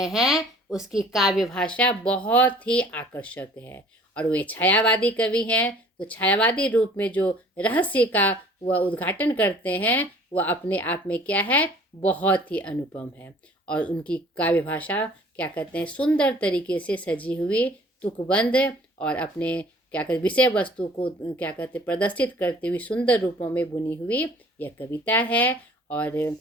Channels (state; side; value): normal; both; correlation 0.51